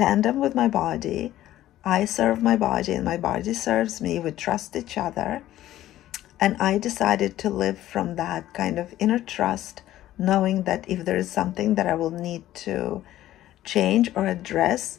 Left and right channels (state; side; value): quieter; right; 13.8 dB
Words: with my body. I serve my body and my body serves me. We trust each other. And I decided to live from that kind of inner trust, knowing that if there is something that I will need to change or